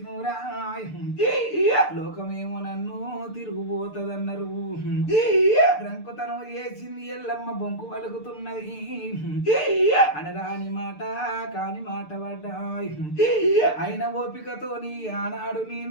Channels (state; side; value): late; right; 6.7 ms